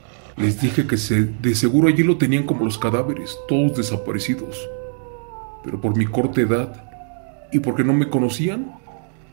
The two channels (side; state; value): left; silent; digital silence